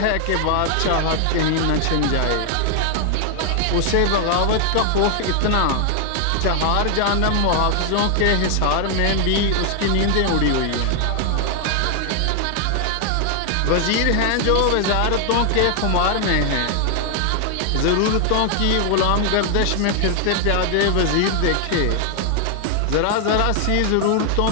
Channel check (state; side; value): different; both; correlation 0.00